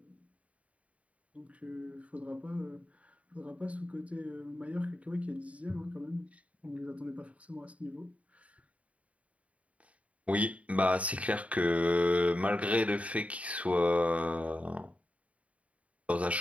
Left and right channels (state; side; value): late; left; 0.066 ms